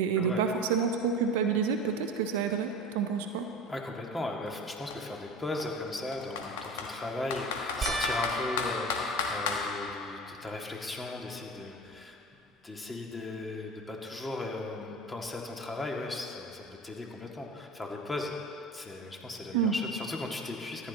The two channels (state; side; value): normal; both; correlation 0.32